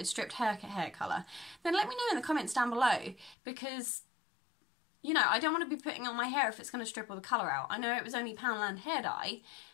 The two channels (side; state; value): right; drops out; at 3.4 s